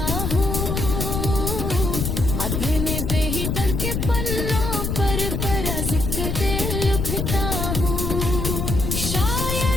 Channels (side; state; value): left; noise; rumble, 1 dB below the sound